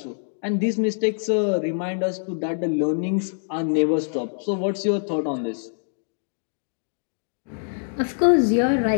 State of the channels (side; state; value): right; silent; digital silence